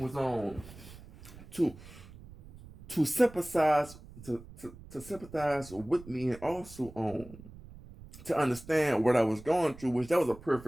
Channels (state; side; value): noise; right; rumble, 18 dB below the sound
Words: was on to to sympathize to sympathize with me, and also to understand what I was going through, which that was a